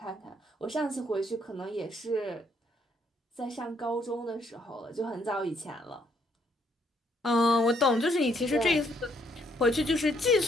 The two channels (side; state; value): both; normal; correlation 0.70